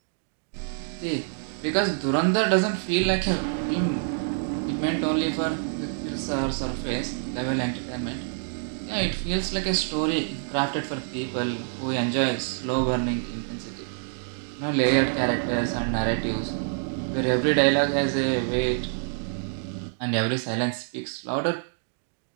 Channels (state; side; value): silent; left; digital silence